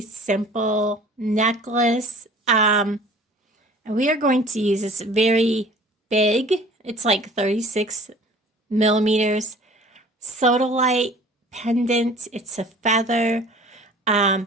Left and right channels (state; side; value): normal; both; correlation 0.47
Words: necklace. And we are going to use this very big, it's like 36 millimeters, Sodalite pendant. It's a feather.